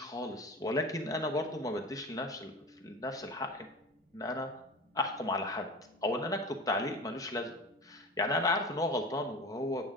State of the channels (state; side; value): normal; both; correlation 0.33